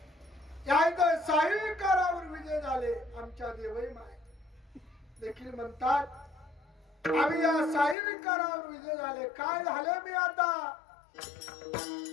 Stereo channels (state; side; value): drops out; right; at 8.0 s